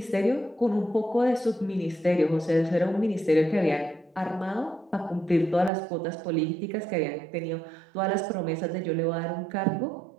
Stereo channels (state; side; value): drops out; left; at 5.7 s